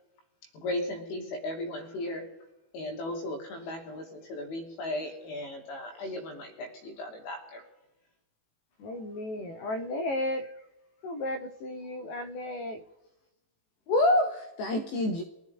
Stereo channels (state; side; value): late; right; 18 ms